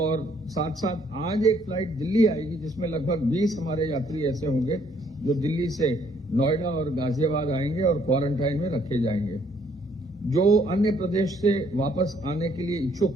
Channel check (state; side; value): normal; both; correlation 0.66